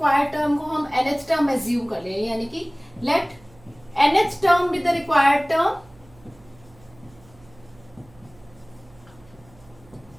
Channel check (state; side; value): noise; right; hum, 26 dB below the sound